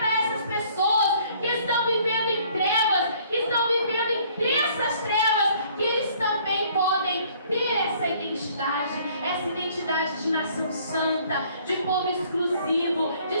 essas pessoas que estão vivendo em trevas, que estão vivendo em densas trevas, que eles também podem ter essa identidade de nação santa, de povo exclusivo,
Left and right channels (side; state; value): both; inverted; correlation -0.59